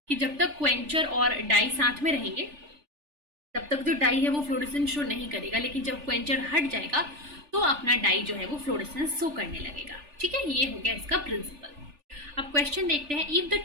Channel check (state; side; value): late; left; 3.4 ms